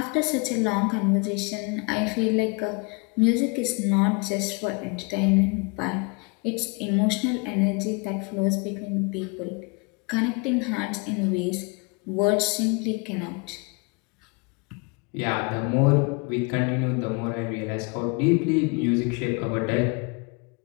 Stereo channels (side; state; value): right; quieter; 31.4 dB